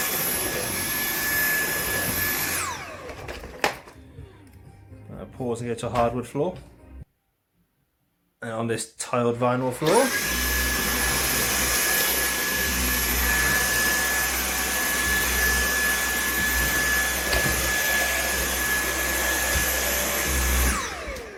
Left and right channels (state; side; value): identical; both; correlation 1.00